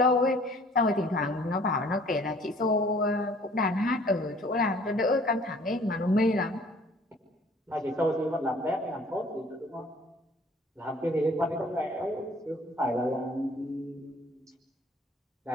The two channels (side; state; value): both; normal; correlation 0.54